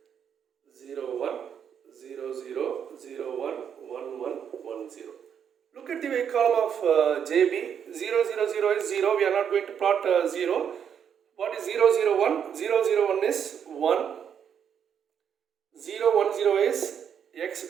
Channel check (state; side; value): quieter; left; 8.1 dB